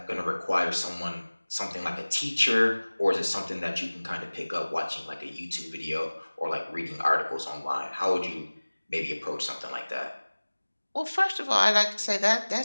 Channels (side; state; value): both; inverted; correlation -1.00